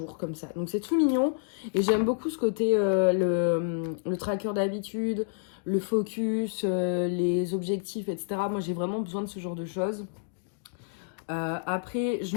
comme ça. Donc c'est tout mignon. Et j'aime beaucoup ce côté, le tracker d'habitude, le focus, les objectifs, etc. Moi, j'ai vraiment besoin de ce genre de choses. Après, je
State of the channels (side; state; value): right; silent; digital silence